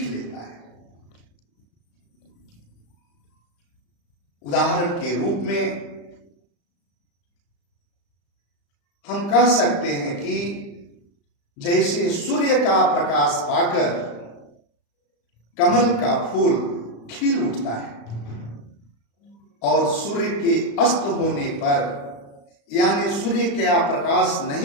लेता है। उदाहरण के रूप में हम कह सकते हैं कि जैसे सूर्य का प्रकाश पाकर कमल का फूल खिल उठता है और सूर्य के अस्त होने पर यानी सूर्य का प्रकाश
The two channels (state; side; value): late; right; 35 ms